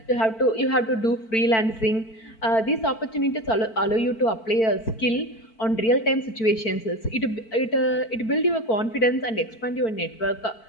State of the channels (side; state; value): right; late; 4.5 ms